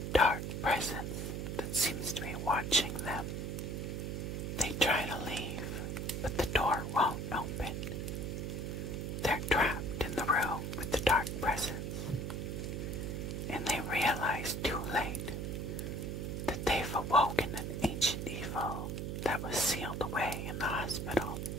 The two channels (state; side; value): noise; right; hum, 3 dB below the sound